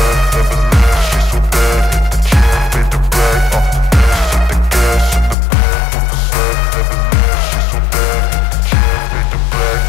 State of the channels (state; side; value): drops out; right; at 5.4 s